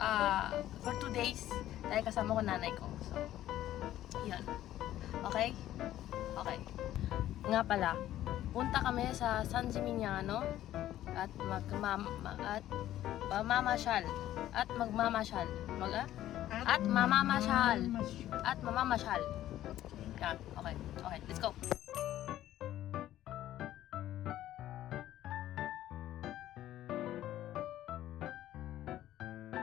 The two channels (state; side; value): quieter; right; 13.2 dB